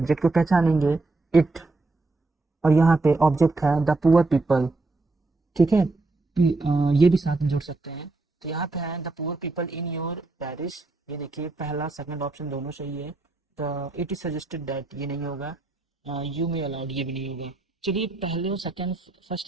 को पहचानेंगे, इट, और यहाँ पे ऑब्जेक्ट है द पुअर पीपल। ठीक है, ये भी साथ में जोड़ सकते हैं, तो यहाँ पे है the poor people in your Paris. ये देखिए पहला सेकंड ऑप्शन दोनों सही है। The it is suggested that, ये नहीं होगा, यू मे अलाउड, ये भी नहीं होगा। चलिए पहले और सेकंड,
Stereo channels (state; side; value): quieter; left; 3.3 dB